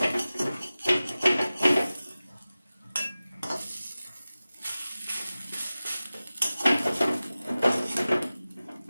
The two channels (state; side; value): inverted; both; correlation -0.96